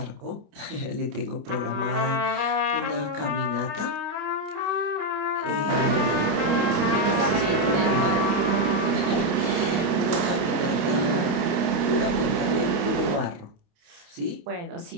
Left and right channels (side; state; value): left; late; 29 ms